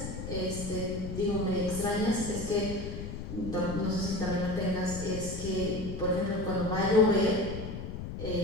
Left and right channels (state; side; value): noise; left; rumble, 7 dB below the sound